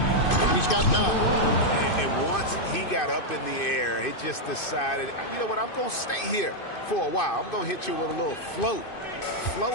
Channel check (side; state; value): right; late; 2.5 ms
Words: He's got 9. And once he got up in the air, he just decided, you know what, I'm going to stay here for a while. I'm going to hit you with a little float.